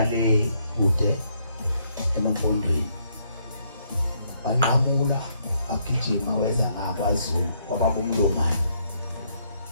le kude emfundweni anqamula agijima weza ngakwaZulu kwaba umlomani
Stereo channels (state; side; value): inverted; both; correlation -0.72